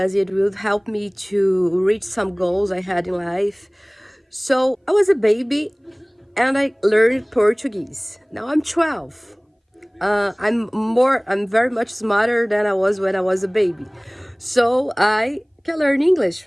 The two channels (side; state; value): both; identical; correlation 1.00